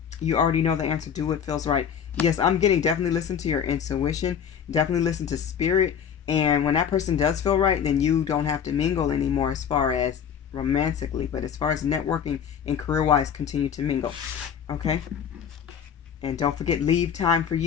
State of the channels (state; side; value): quieter; right; 8.0 dB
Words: you already know the answer. Do what feels right. Yes, I'm getting definitely listen to your intuition, definitely listen to spirit. And when that person does feel right, then you don't have to mingle anymore as far as romantically. But as far as networking and career-wise, continue to mingle. Okay? And don't forget, leave time for